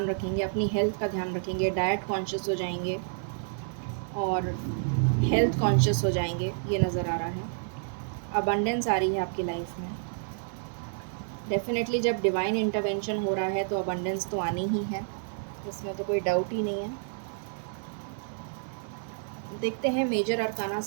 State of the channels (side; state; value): left; silent; digital silence